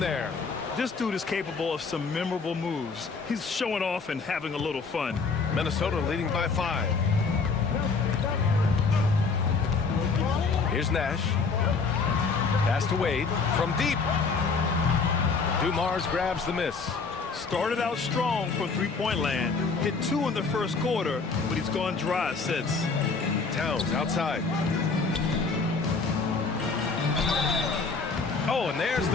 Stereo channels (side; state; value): right; quieter; 4.6 dB